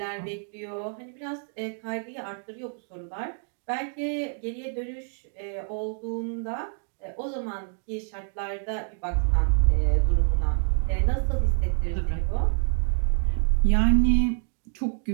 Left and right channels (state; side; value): silent; left; 60 dB below the other